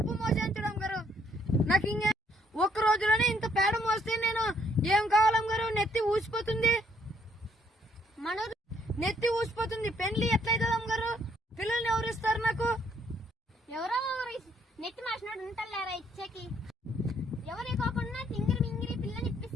మోసాను చూడు అమ్మగారు. నాకు ఇంకా ఒక్క రోజులోనే ఇంత పేడ మోస్తే నేను ఏం కావాలమ్మగారు? నెత్తి ఊసిపోతుంది.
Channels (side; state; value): both; normal; correlation 0.68